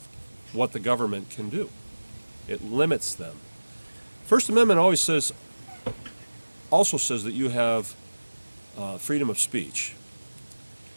what the government can do. It limits them. First Amendment also says that you have freedom of speech.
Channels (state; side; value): inverted; both; correlation -1.00